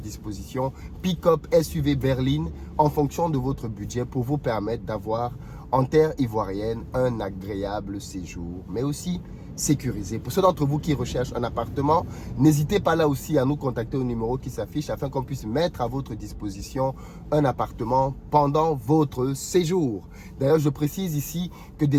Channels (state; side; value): identical; both; correlation 1.00